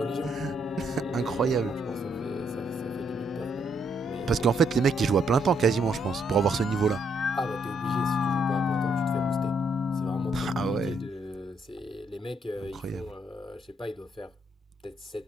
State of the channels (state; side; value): normal; both; correlation 0.73